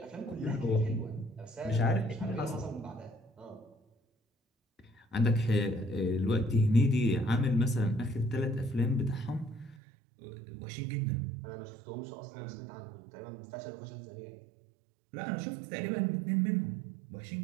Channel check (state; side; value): drops out; left; at 9.8 s